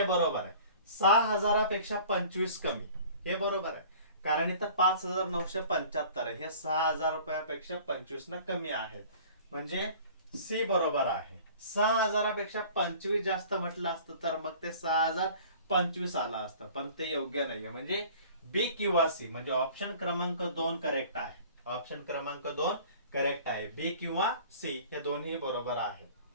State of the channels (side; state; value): both; inverted; correlation -0.47